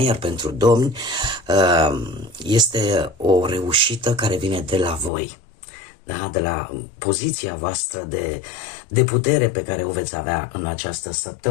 iar pentru domni este o reușită care vine de la voi, da? De la poziția voastră de putere pe care o veți avea în această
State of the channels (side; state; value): right; drops out; at 5.1 s